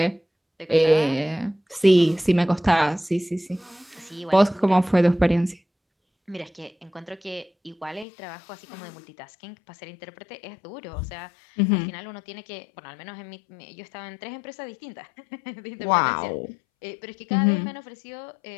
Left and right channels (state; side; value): drops out; right; at 8.1 s